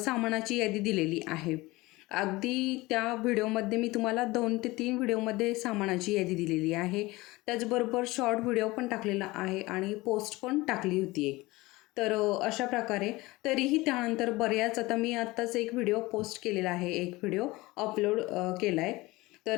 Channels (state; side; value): quieter; right; 20.9 dB